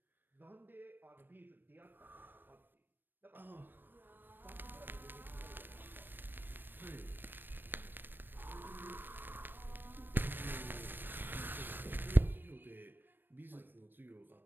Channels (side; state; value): left; late; 0.094 ms